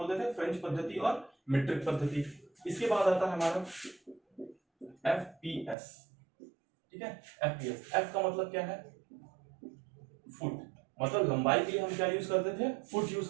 थे, फ्रेंच पद्धति और मीट्रिक पद्धति। इसके बाद आता है हमारा एफपीएस, ठीक है। एफपीएस, एफ का मतलब क्या है, फुट, मतलब लंबाई के लिए हम क्या यूज करते थे, फुट यूज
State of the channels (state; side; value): drops out; left; at 5.8 s